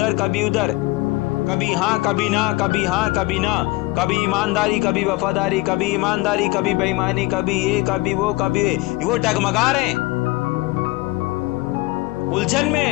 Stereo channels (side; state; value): right; quieter; 21.2 dB